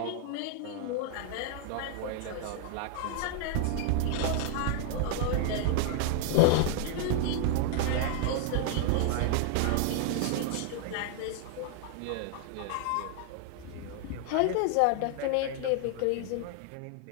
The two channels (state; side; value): different; both; correlation 0.00